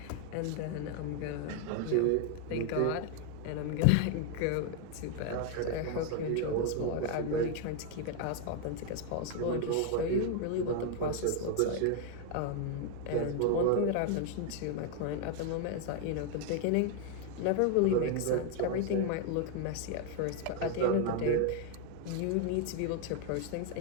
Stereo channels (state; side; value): different; both; correlation 0.00